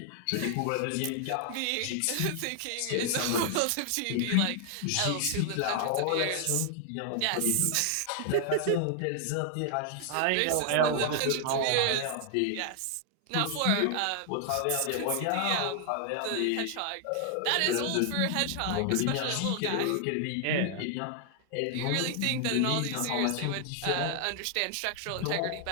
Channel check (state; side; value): different; both; correlation 0.00